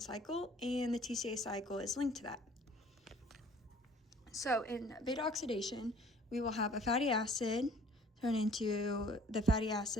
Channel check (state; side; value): normal; both; correlation 0.54